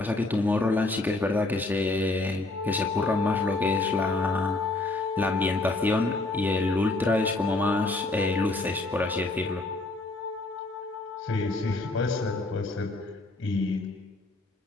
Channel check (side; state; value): right; quieter; 3.0 dB